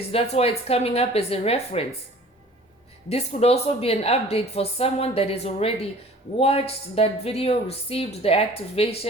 That's why it's coming up as a reference. This could also be an update for someone that has already watched that video, received the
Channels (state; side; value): normal; both; correlation 0.47